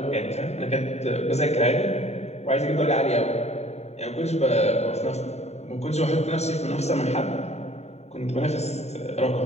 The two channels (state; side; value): late; right; 0.32 ms